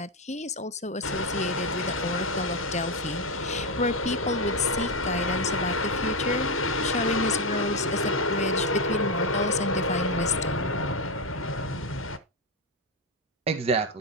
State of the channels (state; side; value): normal; both; correlation 0.07